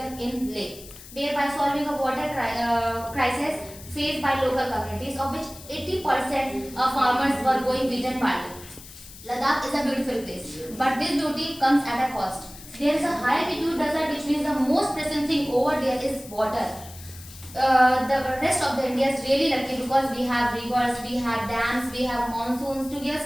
in Leh, thereby solving a water crisis faced by local communities, of which 80% of farmers were going wheat and barley. Ladakh is a beautiful place, but this beauty comes at a cost. There is a high altitude desert, which means the most pressing thing over there is water. The rest of the India is really lucky because we have rivers, we have dams, we have monsoons to give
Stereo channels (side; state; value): left; noise; hiss, 17 dB below the sound